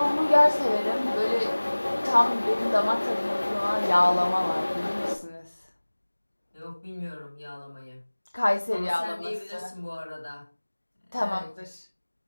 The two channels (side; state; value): both; inverted; correlation -1.00